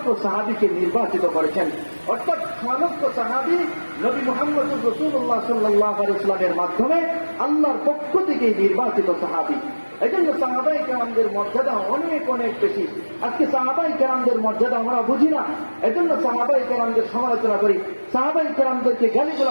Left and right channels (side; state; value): both; inverted; correlation -1.00